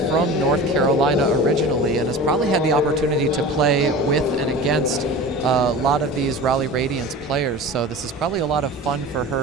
from North Carolina originally and has probably had the opportunity to play with and against a lot of these Raleigh Radiance players. So this is probably a lot of fun for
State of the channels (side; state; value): both; normal; correlation 0.35